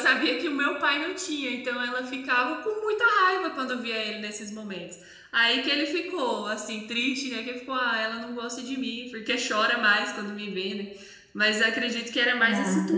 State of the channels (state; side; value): identical; both; correlation 1.00